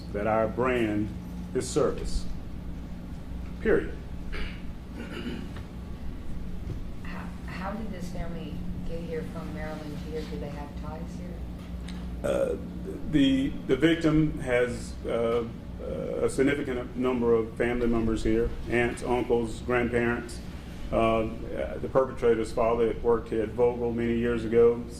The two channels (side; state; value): both; identical; correlation 1.00